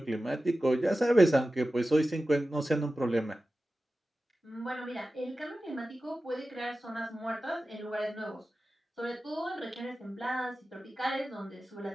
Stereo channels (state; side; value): normal; both; correlation 0.94